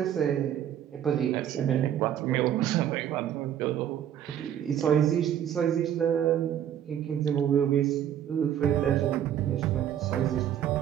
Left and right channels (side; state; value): left; quieter; 10.2 dB